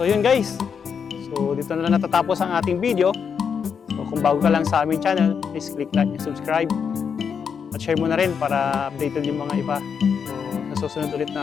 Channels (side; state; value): right; quieter; 6.7 dB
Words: yun guys, so dito na lang natatapos ang ating video. So kung bago ka lang sa aming channel, please click like and subscribe. At share mo na rin para updated yung mga iba. So sa susunod ulit